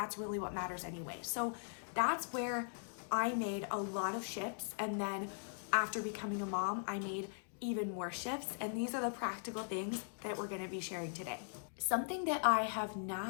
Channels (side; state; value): right; silent; digital silence